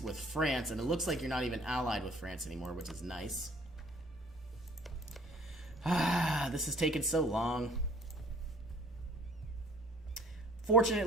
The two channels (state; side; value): normal; both; correlation 0.54